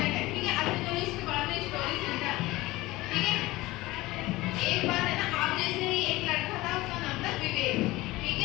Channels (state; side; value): quieter; right; 19.3 dB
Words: है। ठीक है, अच्छा चलो इसके बाद में स्टोरी सुनते हैं। ठीक है, एक बार है ना, आप जैसे ही एक लड़का था, उसका नाम था विवेक। ठीक